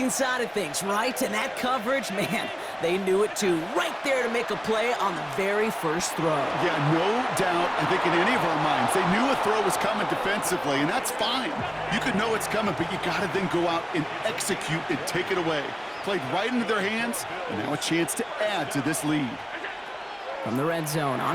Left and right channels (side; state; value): both; identical; correlation 1.00